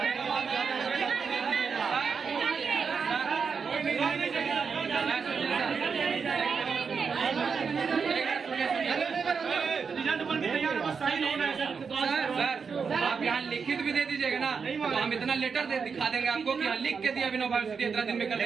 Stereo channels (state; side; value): quieter; left; 5.7 dB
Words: रिजल्ट बन के तैयार है, बस साइन होना है सर। सर आप यहाँ लिखित भी दे दीजिएगा ना, तो हम इतना लेटर दे दिखा देंगे आपको कि यहाँ लिख के दिया विनोबा यूनिवर्सिटी इतना दिन में कर